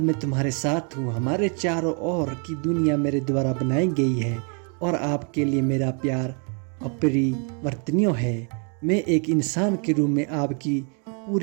तुम्हारे साथ हूं। हमारे चारों ओर की दुनिया मेरे द्वारा बनाई गई है और आपके लिए मेरा प्यार अपरिवर्तनीय है। मैं एक इंसान के रूप में आपकी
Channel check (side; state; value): left; quieter; 38.9 dB